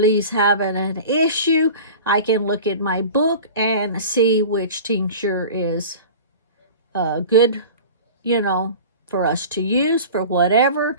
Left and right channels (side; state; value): both; inverted; correlation -0.38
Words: having an issue, I can look at my book and see which tincture is good, you know, for us to use for whatever.